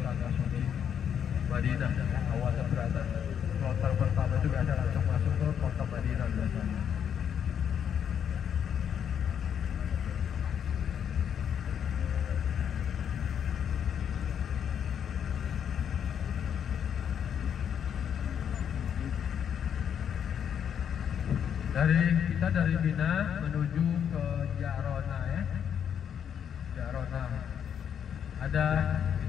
tanah suci Madinah. Awalnya berada kloter pertama itu biasa langsung masuk ke kota Madinah biasanya. Dari Mina menuju ke Jarona ya. Jarona. Ada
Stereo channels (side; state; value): right; quieter; 8.4 dB